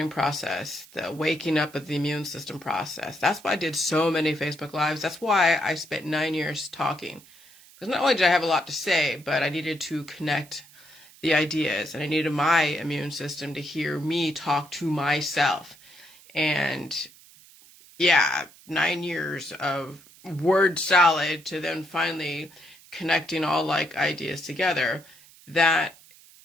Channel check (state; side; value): noise; right; hiss, 24 dB below the sound